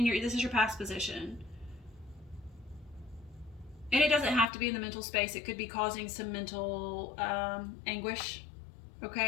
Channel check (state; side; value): drops out; right; at 4.5 s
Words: is your past position. And it doesn't have to be in the mental space. It could be causing some mental anguish,